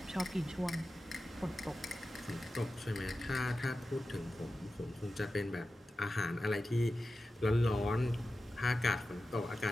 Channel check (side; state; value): both; normal; correlation 0.93